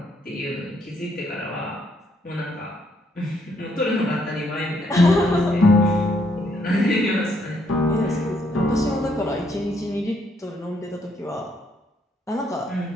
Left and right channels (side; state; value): both; normal; correlation 0.71